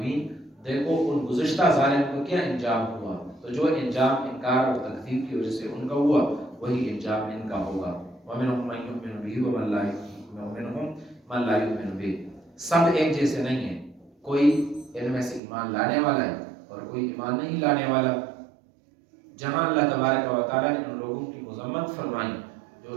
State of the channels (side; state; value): left; drops out; at 15.4 s